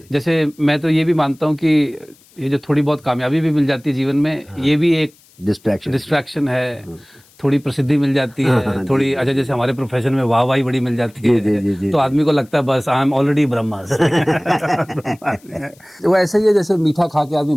जैसे मैं तो ये भी मानता हूँ कि ये जो थोड़ी बहुत कामयाबी भी मिल जाती है जीवन में, ये भी एक डिस्ट्रैक्शन है। थोड़ी प्रसिद्धि मिल जाती है, थोड़ी अच्छा, जैसे हमारे प्रोफेशन में वाहवाही बड़ी मिल जाती है, तो आदमी को लगता है बस आई एम ऑलरेडी ब्रह्मास्मि। वो ऐसे ही है जैसे मीठा खा के आदमी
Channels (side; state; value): left; noise; hiss, 29 dB below the sound